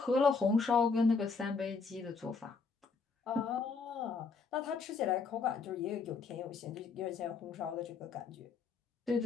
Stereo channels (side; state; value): right; quieter; 4.9 dB